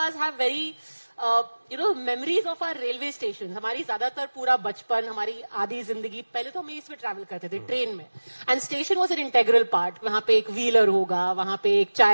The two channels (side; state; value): both; inverted; correlation -1.00